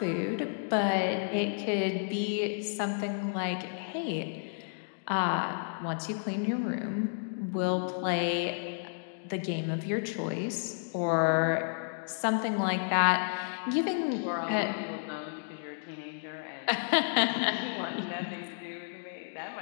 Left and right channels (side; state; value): right; silent; digital silence